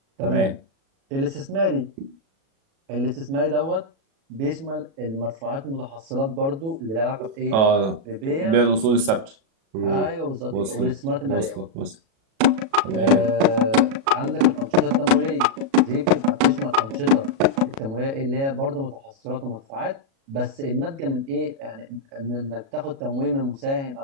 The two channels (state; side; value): late; left; 37 ms